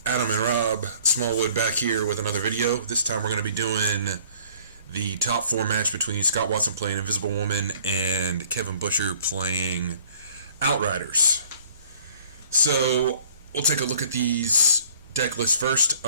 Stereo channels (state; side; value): inverted; both; correlation -0.55